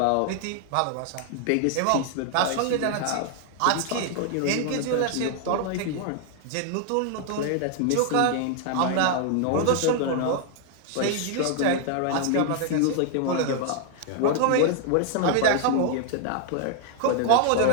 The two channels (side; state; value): both; different; correlation 0.00